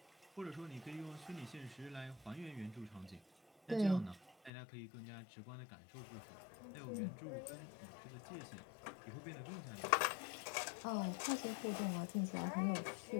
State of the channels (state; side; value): drops out; right; at 4.5 s